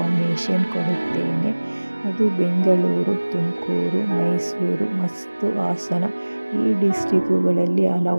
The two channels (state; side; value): inverted; both; correlation -1.00